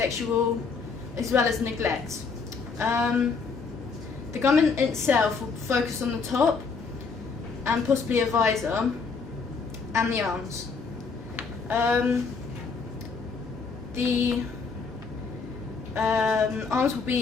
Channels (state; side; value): quieter; right; 4.9 dB